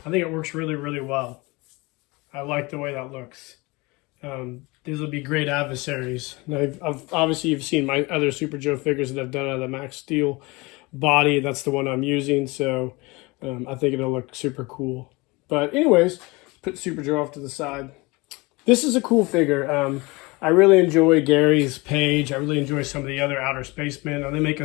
I think it works really, really well. I like the way that looks. These will be great adversaries. Now, obviously, you've seen my other Super Joe figures that I've done out of the Max Steel body. That's the one I'm using, so I think it'll look super cool. But anyways, put Super Joe off to the side. This is a cool figure. I really enjoy Gary's page. I really enjoy some of the other Outer Spacemen. They make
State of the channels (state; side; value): quieter; right; 24.6 dB